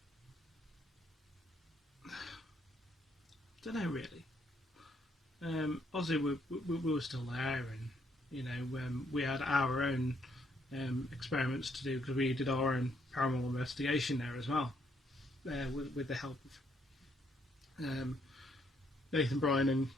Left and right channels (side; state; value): both; normal; correlation 0.71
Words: I don't know really. Obviously we were still there, and you know, we had our own experiments to do, because we did our own paranormal investigation there as well, with the help of Nathan, Brian and